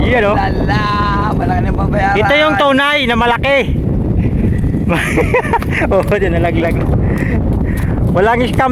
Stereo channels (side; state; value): both; identical; correlation 1.00